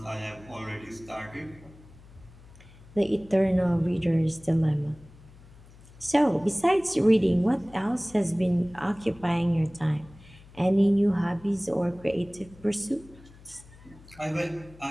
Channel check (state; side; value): noise; left; hum, 22 dB below the sound